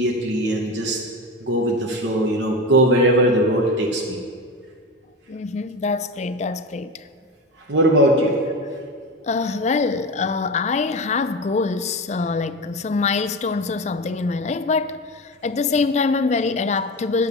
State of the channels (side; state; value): both; normal; correlation 0.24